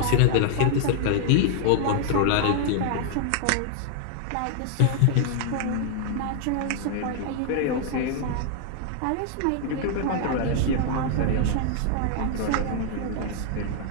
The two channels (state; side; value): different; both; correlation 0.00